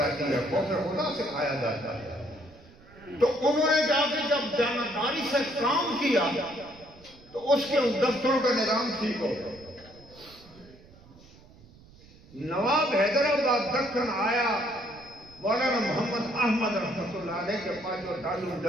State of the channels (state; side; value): noise; right; rumble, 24 dB below the sound